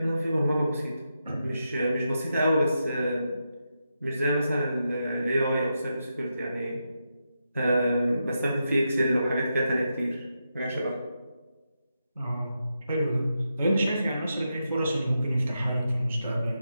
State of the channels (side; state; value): both; inverted; correlation -0.86